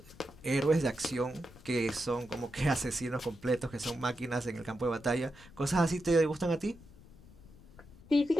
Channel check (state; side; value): noise; left; rumble, 21 dB below the sound